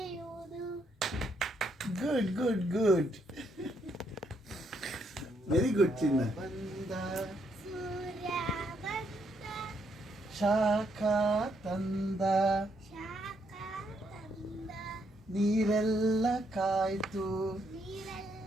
Good good good, very good ಚಿನ್ನ. ಬಂದ ಸೂರ್ಯ ಬಂದ, ಶಾಖ ತಂದ, ಶಾಖ ತಂದ, ನೀರೆಲ್ಲ ಕಾಯ್ತು,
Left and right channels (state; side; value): normal; both; correlation 0.75